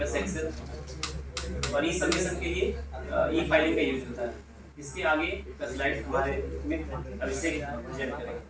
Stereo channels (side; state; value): both; identical; correlation 1.00